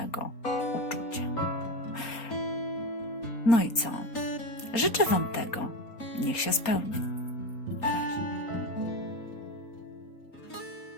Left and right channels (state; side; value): late; right; 4.3 ms